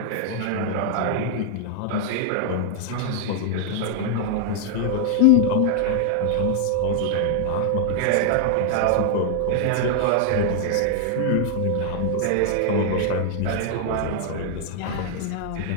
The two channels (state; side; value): different; both; correlation 0.00